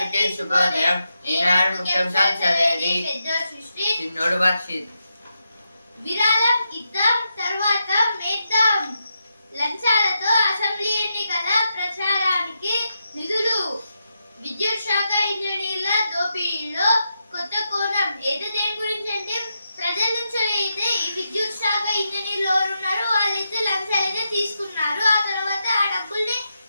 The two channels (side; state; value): both; inverted; correlation -0.85